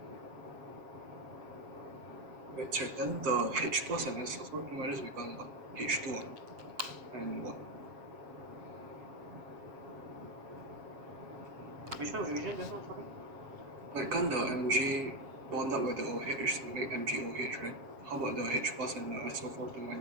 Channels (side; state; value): left; late; 7.4 ms